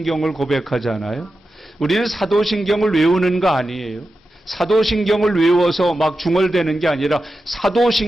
고백하잖아요. 우리는 사도신경을 외우는 거 아니에요. 사도신경을 외워서 막 중얼대는 게 아니라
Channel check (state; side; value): normal; both; correlation 0.91